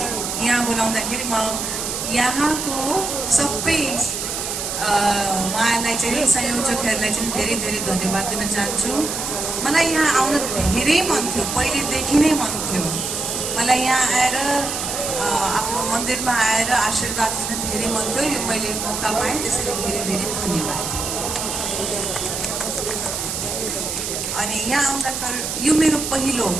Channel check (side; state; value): right; noise; hiss, 4 dB below the sound